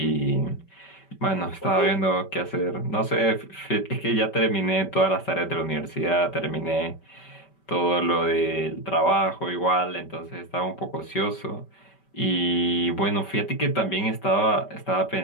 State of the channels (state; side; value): late; right; 5.2 ms